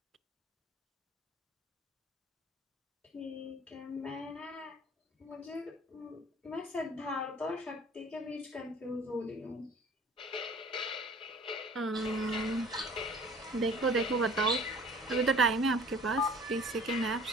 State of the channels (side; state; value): both; normal; correlation 0.49